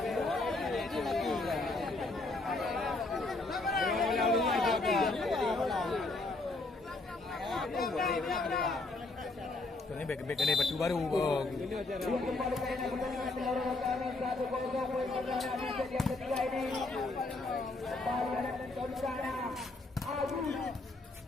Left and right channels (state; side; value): quieter; right; 3.2 dB